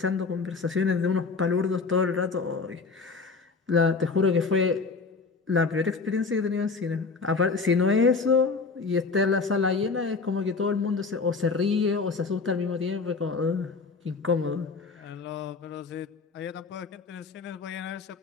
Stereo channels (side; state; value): right; quieter; 4.5 dB